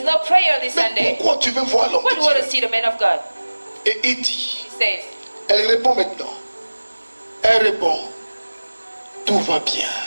no prayer this Mais Sunday. pourquoi tu veux voir l'homme Why de do you want to Dieu? see the man of God? Et il dit, He says, elle répond maintenant. Elle répond, tout va bien.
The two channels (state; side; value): inverted; both; correlation -1.00